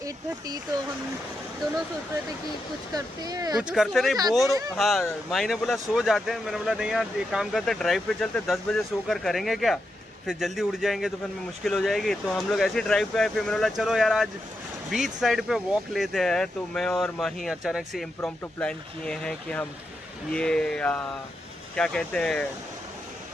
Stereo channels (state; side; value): normal; both; correlation 0.85